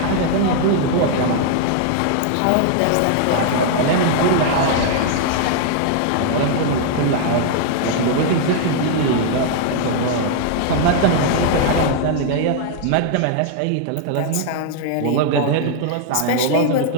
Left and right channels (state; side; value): different; both; correlation 0.00